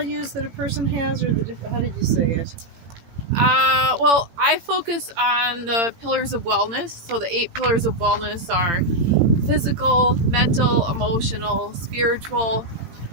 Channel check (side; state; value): left; late; 18 ms